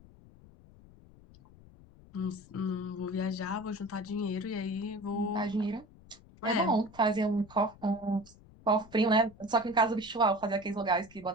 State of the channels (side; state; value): left; noise; rumble, 23 dB below the sound